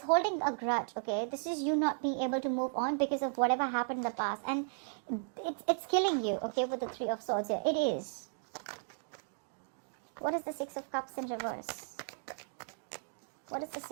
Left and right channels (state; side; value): silent; left; digital silence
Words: holding a grudge, okay? This is you not being able to move on because of whatever happened in the past. And it's killing you, okay, with the Three of Swords here. It is. What is the Six of Cups in reverse? What is the